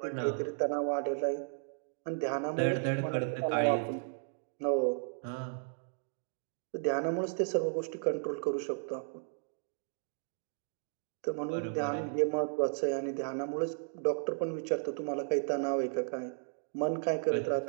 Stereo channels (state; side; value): silent; left; digital silence